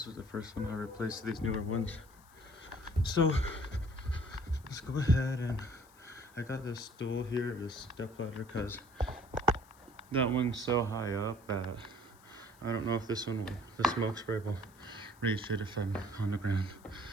was the first one I replaced these newer ones. So let's go ahead, and I got this stool here, this step ladder, because that one's so high up that I don't know if the smoke spray will reach it if I'm on the ground.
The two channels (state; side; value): noise; left; hiss, 28 dB below the sound